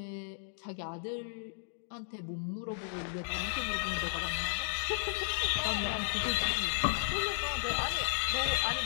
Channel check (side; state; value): right; silent; digital silence